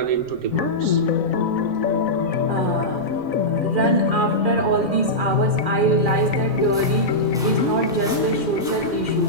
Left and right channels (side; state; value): right; noise; rumble, 25 dB below the sound